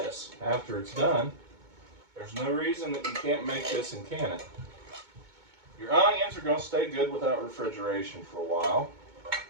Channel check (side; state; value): left; late; 2.2 ms